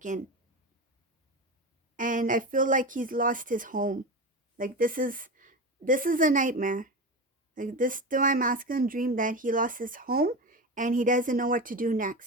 in. And I feel like he's lost his home. Like this is a nightmare. Like this divine masculine dream that he lost his home and he doesn't know what to do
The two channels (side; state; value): both; normal; correlation 0.23